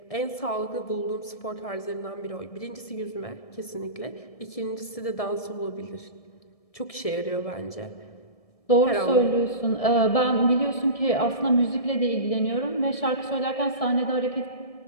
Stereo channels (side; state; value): right; late; 1.7 ms